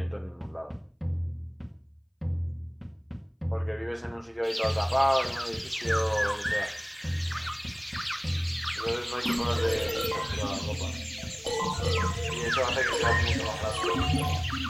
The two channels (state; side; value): identical; both; correlation 1.00